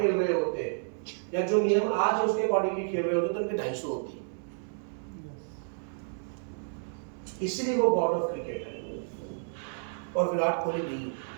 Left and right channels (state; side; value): silent; left; 55 dB below the other